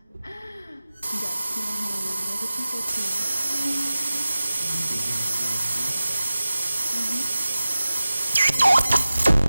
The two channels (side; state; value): both; inverted; correlation -0.95